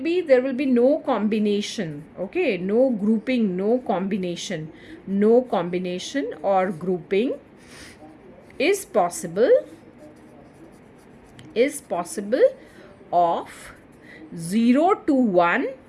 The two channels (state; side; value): identical; both; correlation 1.00